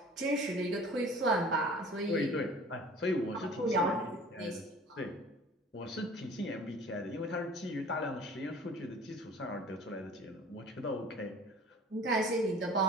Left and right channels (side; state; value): both; normal; correlation 0.46